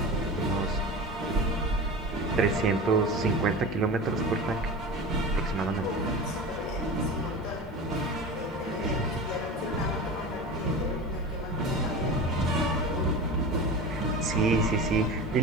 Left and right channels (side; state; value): both; normal; correlation 0.31